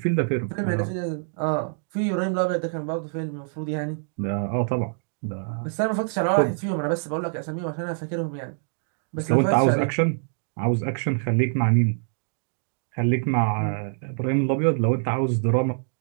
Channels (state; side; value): silent; left; digital silence